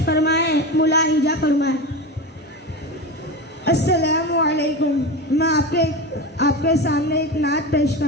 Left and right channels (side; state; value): both; normal; correlation 0.23